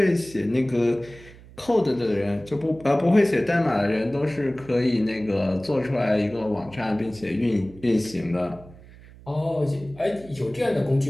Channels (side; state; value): right; noise; hum, 21 dB below the sound